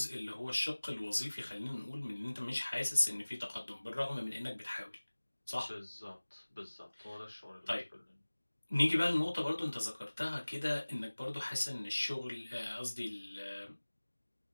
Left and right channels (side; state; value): both; inverted; correlation -1.00